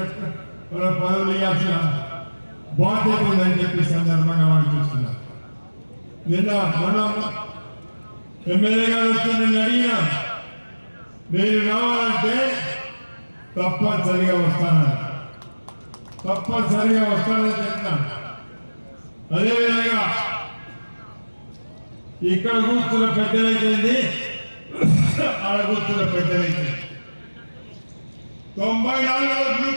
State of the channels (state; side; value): inverted; both; correlation -1.00